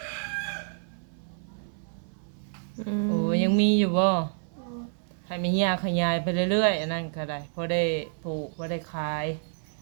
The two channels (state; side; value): silent; left; 58 dB below the other